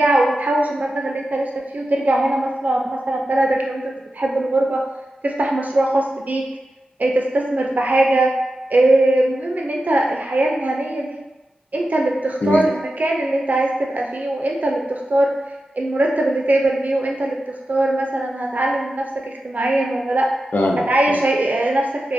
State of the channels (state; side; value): normal; both; correlation 0.91